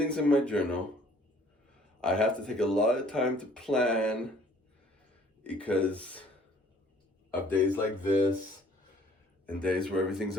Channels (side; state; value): both; normal; correlation 0.57